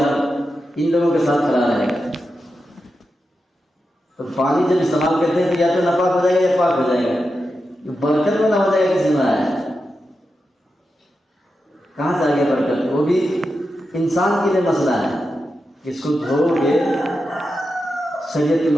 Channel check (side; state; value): both; normal; correlation 0.89